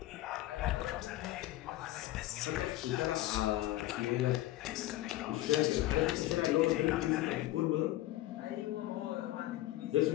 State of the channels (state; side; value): quieter; right; 15.8 dB